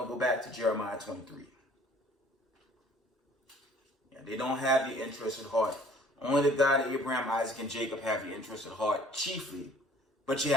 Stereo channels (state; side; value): normal; both; correlation 0.54